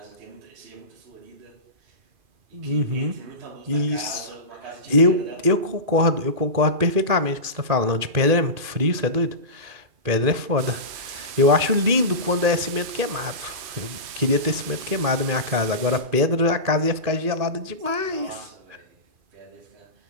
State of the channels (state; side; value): late; left; 2.5 ms